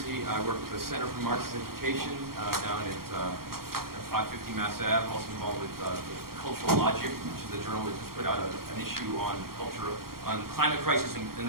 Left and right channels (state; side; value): late; left; 0.93 ms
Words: I work with the Center for Marxist Education down at 550 Mass Ave. I'm also involved with Cultural Logic, which is a journal that just put out an issue on culture, on climate crisis and